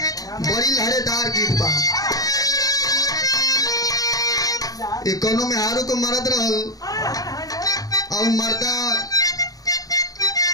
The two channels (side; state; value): right; late; 0.18 ms